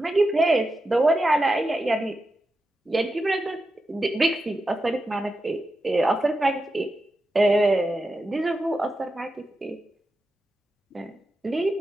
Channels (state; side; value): normal; both; correlation 0.89